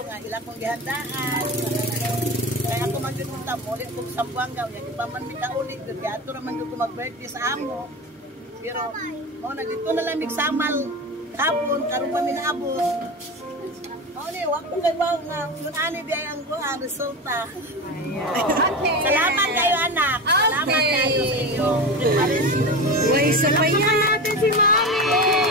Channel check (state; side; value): normal; both; correlation 0.25